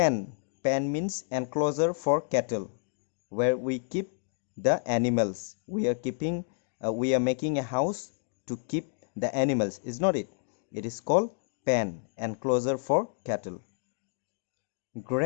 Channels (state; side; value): silent; right; digital silence